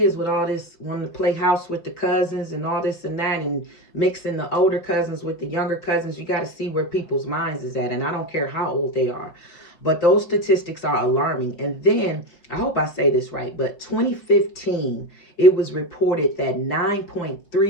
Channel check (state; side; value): late; right; 5.3 ms